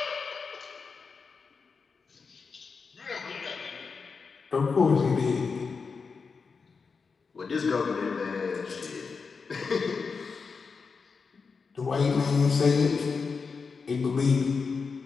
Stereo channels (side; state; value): right; quieter; 5.1 dB